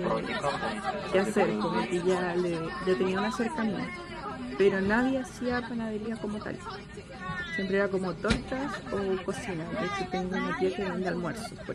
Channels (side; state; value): both; identical; correlation 1.00